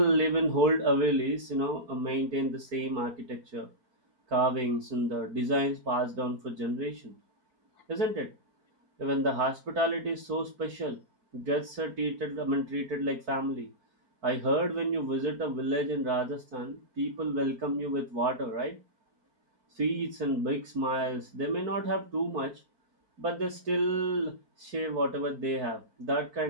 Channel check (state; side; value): late; left; 4.4 ms